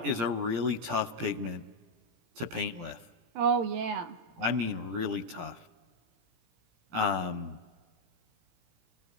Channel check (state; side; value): late; left; 17 ms